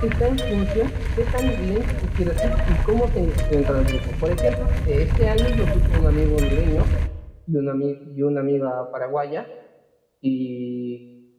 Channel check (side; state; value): both; identical; correlation 1.00